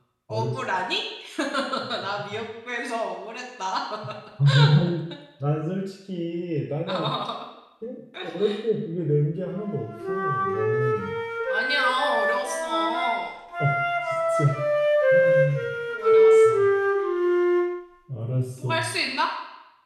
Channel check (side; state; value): both; identical; correlation 1.00